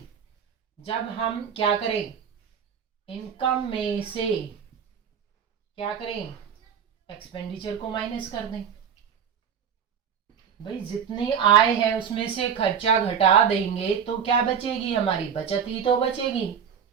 जब हम क्या करें, इनकम में से क्या करें, एक्सपेंडिचर को माइनस कर दें। भाई जितनी आय है उसमें से खर्चा घटा देंगे तो क्या बचेगी, हमारी बचत ही तो बचेगी।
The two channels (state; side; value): quieter; left; 7.6 dB